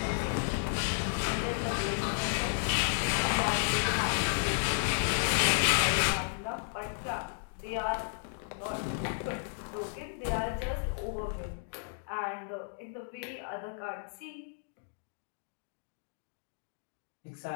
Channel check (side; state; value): right; silent; digital silence